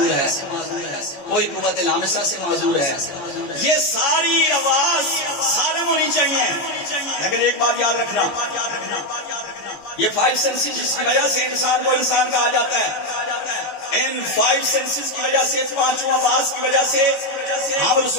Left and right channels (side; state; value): right; late; 14 ms